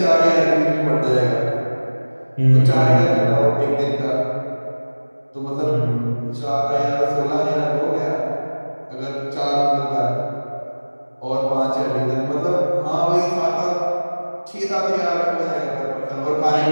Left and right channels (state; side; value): inverted; both; correlation -1.00